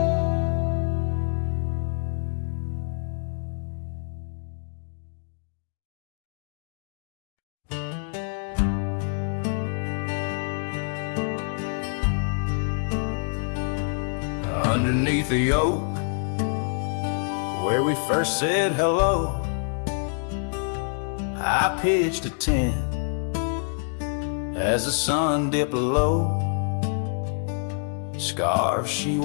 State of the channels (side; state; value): right; silent; 61 dB below the other